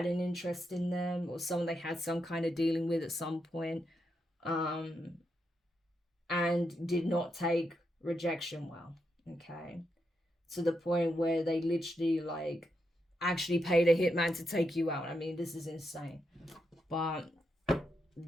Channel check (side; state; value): both; normal; correlation 0.83